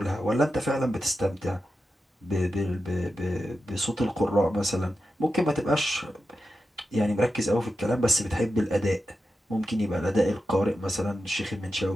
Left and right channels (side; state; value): both; normal; correlation 0.91